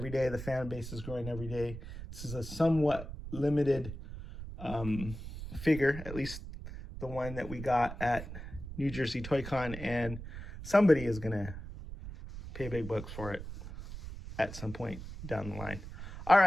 day. The fan base is growing every day. This is a somewhat limited figure, at least the one that we got at New Jersey Toy Con, and somebody is going to pay big bucks for it at some point down the line. All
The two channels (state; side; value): noise; right; rumble, 10 dB below the sound